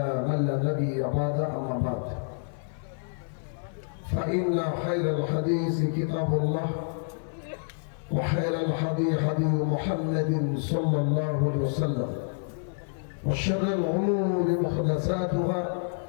من لا نبي بعد أما بعد فإن خير الحديث كتاب الله وخير الهدي هدي محمد صلى الله عليه وسلم وشر الأمور محدثاتها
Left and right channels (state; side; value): silent; right; 56 dB below the other